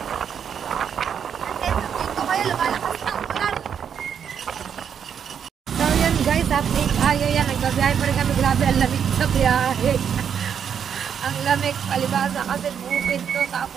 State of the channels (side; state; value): left; quieter; 7.8 dB